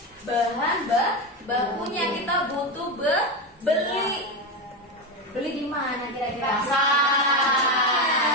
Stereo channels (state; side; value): normal; both; correlation 0.15